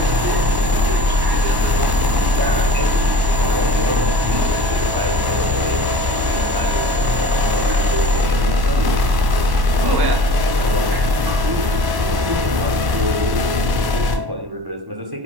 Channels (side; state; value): left; late; 1.1 ms